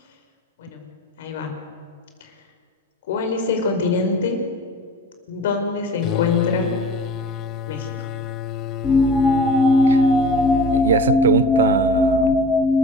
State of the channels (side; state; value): both; normal; correlation 0.39